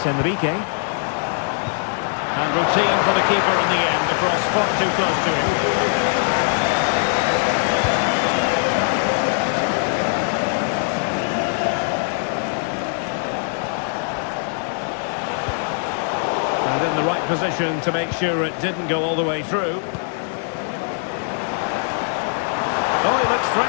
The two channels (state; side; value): silent; right; 63 dB below the other